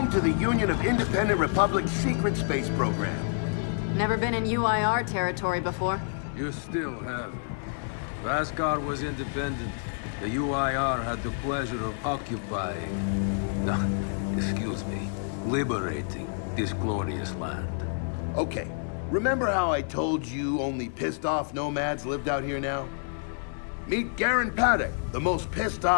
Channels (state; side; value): silent; right; digital silence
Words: to the Union of Independent Republic's secret space program. Never been in UIR territory before. You still haven't. Vascar was independent. The UIR had the pleasure of occupying... No, excuse me. Liberating this glorious land. Okay, remember how I told you only pissed-off nomads lived out here now? Meet Garen Paddock, the most